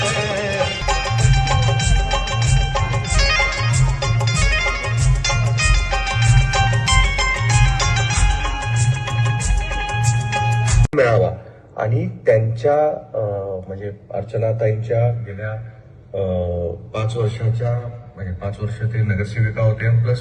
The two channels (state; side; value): identical; both; correlation 1.00